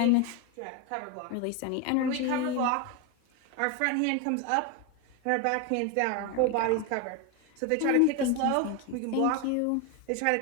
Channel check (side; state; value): both; different; correlation 0.02